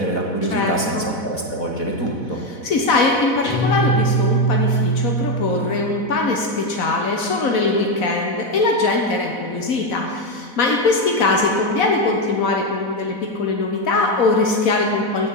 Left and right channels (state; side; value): late; right; 4.1 ms